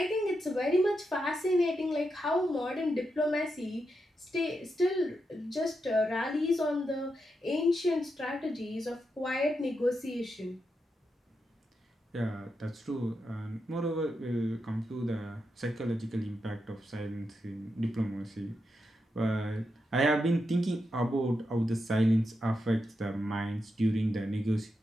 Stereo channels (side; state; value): both; normal; correlation 0.86